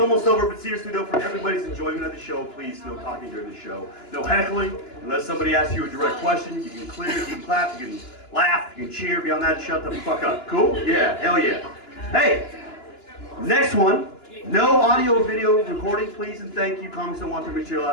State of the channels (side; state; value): right; late; 2.9 ms